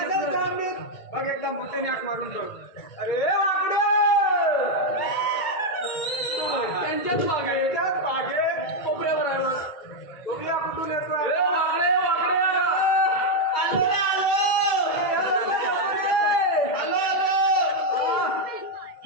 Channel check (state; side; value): late; right; 2.2 ms